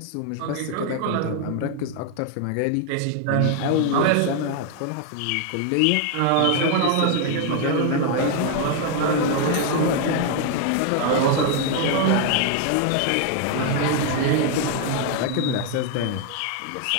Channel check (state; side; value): different; both; correlation 0.00